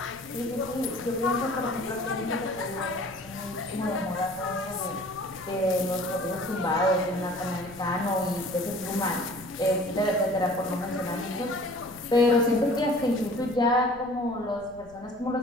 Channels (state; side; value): noise; left; rumble, 23 dB below the sound